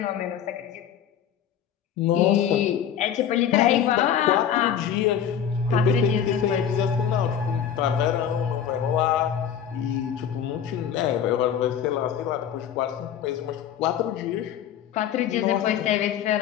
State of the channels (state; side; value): quieter; right; 8.9 dB